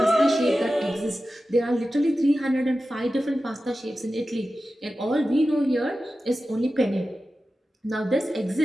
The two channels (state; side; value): normal; both; correlation 0.94